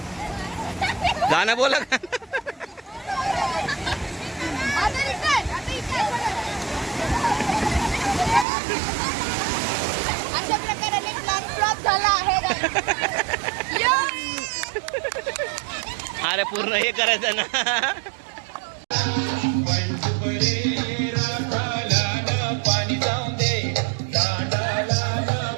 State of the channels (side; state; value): left; drops out; at 8.5 s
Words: गाणं बोला का? अशा प्रकारे प्लॅन फ्लॉप झाला आहे. अरे पूर्ण हे करायचं ना.